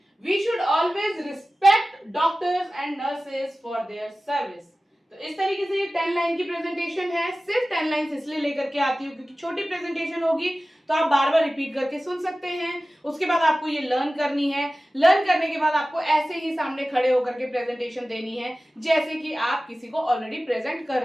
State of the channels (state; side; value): normal; both; correlation 0.96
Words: We should always respect doctors and nurses for their service. तो इस तरीके से ये 10 line की presentation है। सिर्फ 10 line इसलिए लेकर के आती हूँ क्योंकि छोटी प्रेजेंटेशन होगी तो आप बार बार रिपीट करके सुन सकते हैं। उसके बाद आपको ये लर्न करनी है। लर्न करने के बाद आपको ऐसे ही सामने खड़े होकर के प्रेजेंटेशन देनी है जैसे कि आप किसी को ऑलरेडी प्रेजेंट कर